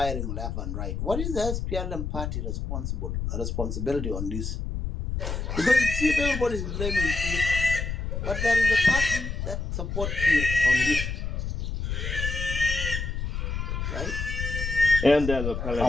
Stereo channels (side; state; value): left; noise; rumble, 3 dB below the sound